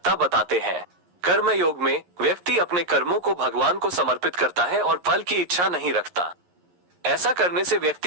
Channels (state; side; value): late; left; 11 ms